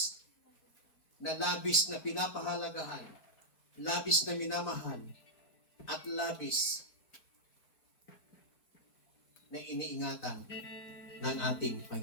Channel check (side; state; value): right; late; 4.5 ms